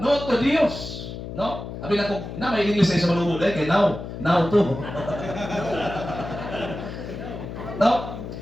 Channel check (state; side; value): noise; left; hum, 9 dB below the sound